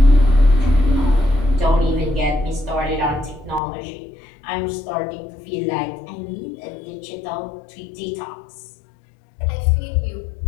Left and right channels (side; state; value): right; drops out; at 3.6 s